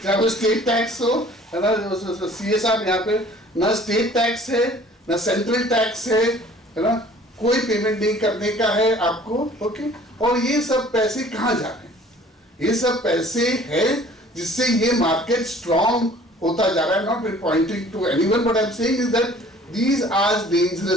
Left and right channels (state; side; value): normal; both; correlation 0.51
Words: चाहे वो state tax हो, है ना, CSR यहाँ पे ना state tax है, ना central tax है ना, कोई पेमेंट नहीं करने का है आपको. ओके, और ये सब पैसे कहाँ जा रहे हैं? ये सब पैसे है जिससे ये मार्केट स्ट्रॉन्ग होता जा रहा है. Not be pointing to anyone but I am saying is that these are